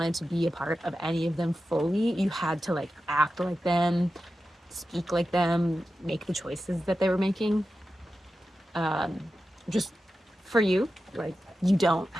to be a part of any of them fully, you had to like act like them, speak like them, make the choices that they were making. Just for you, like you don't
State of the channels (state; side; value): normal; both; correlation 0.92